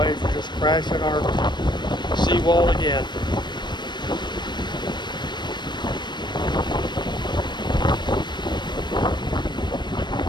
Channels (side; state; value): right; late; 0.22 ms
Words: are just crashing our seawall again.